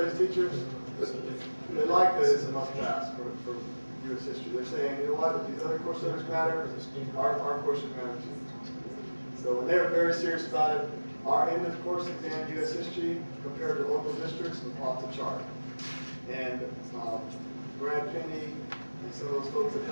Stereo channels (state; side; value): inverted; both; correlation -1.00